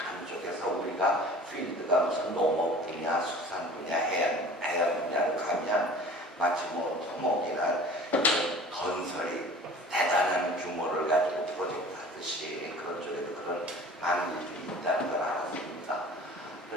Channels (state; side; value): normal; both; correlation 0.44